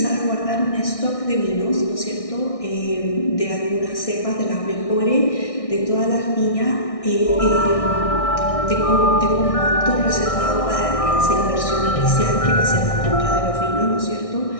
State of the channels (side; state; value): right; late; 1.6 ms